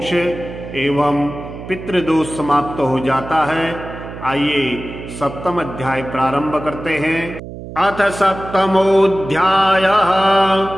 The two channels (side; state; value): right; noise; hum, 12 dB below the sound